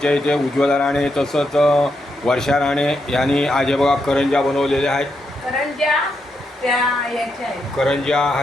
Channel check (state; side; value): normal; both; correlation 0.82